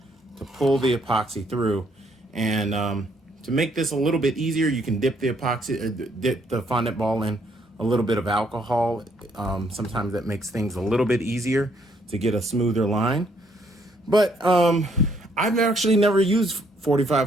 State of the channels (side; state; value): both; normal; correlation 0.69